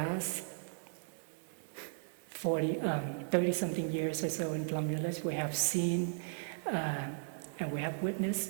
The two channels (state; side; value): silent; left; 53 dB below the other